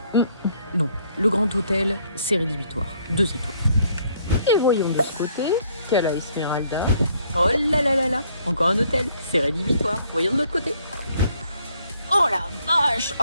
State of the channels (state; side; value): inverted; both; correlation -0.66